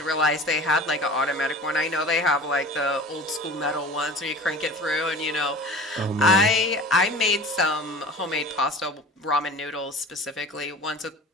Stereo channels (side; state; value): both; normal; correlation 0.40